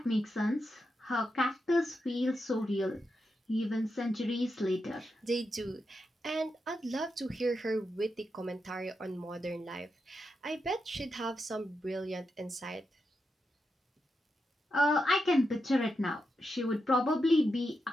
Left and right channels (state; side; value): normal; both; correlation 0.86